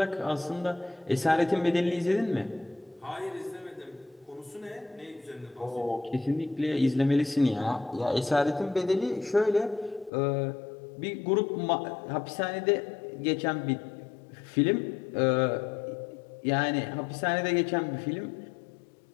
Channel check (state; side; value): drops out; right; at 10.1 s